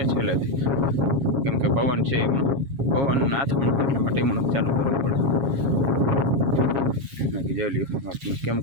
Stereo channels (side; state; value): left; late; 7.3 ms